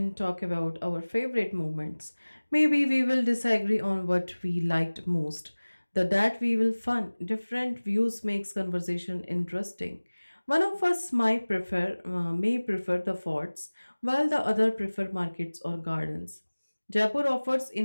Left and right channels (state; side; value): inverted; both; correlation -1.00